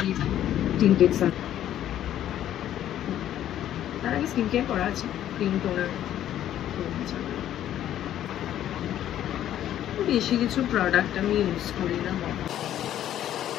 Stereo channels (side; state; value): right; quieter; 11.6 dB